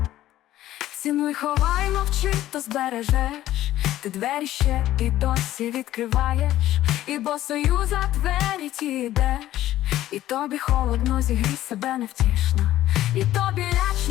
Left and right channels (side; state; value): right; quieter; 13.9 dB